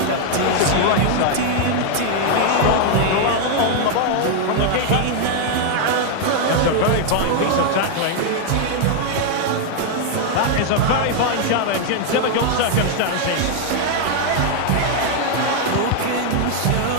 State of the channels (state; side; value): different; both; correlation 0.00